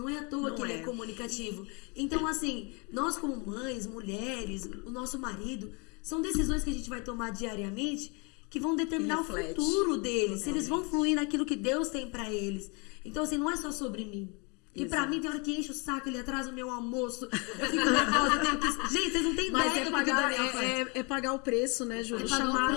é à toa Não que ele é. é comunicativo. Então, assim, nós como mães, mulheres, o nosso marido, são decisões que a gente vai tomar diariamente que vão determinar o Que reflete. futuro deles, se eles vão fluir naquilo que Deus tem pra eles. Então, assim, não é só sobre mim. Que pra mim tem hora que enche o saco, ele atrasa o meu almoço, eu fico nervosa, eu tenho que... Gente, vocês não têm Mas ideia é do que o pagar, Daniel faz. é pagar o preço, né, Júlio? É pagar o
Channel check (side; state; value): right; quieter; 31.8 dB